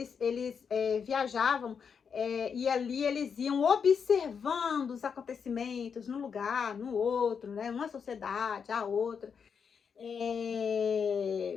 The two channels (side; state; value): right; quieter; 6.5 dB